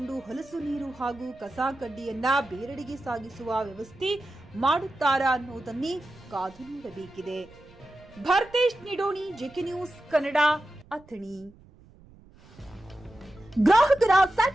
ಹೊಲಸು ನೀರು ಹಾಗೂ ಕಸ ಕಡ್ಡಿಯನ್ನ ಬೇರೆಡೆಗೆ ಸಾಗಿಸುವ ವ್ಯವಸ್ಥೆ ಮಾಡುತ್ತಾರಾ ಅನ್ನೋದನ್ನೇ ಕಾದು ನೋಡಬೇಕಿದೆ. Bharthesh Nidoni, JK news Kannada, Athani. ಗ್ರಾಹಕರ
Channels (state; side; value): noise; right; rumble, 25 dB below the sound